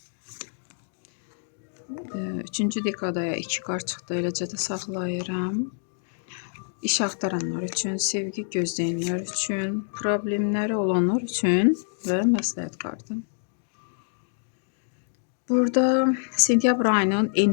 3-cü dekadaya 2 kart çıxdı. Eləcə də saxlayıram. İş axtaranlar üçün, sevgi gözləyənlər üçün, problemləri olanlar üçün və məsləhət kartı. Burada sentyabr ayının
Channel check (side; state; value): right; silent; digital silence